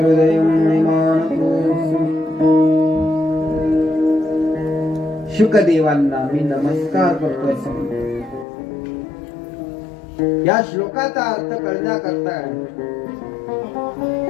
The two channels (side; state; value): right; drops out; at 8.5 s